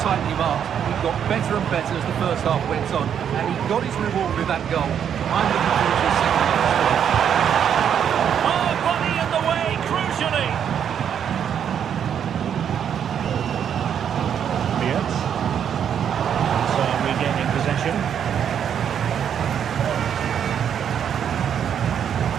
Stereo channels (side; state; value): left; quieter; 8.5 dB